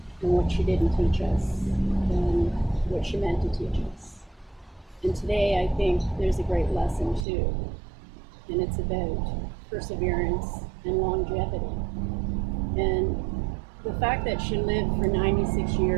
and what she didn't teach us and what she meant to teach us. And today I think there's a great lesson too, and it's about perseverance and longevity. And the fact that she lived for 96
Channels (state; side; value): drops out; left; at 7.2 s